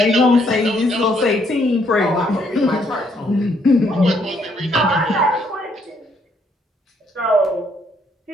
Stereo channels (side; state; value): both; normal; correlation 0.70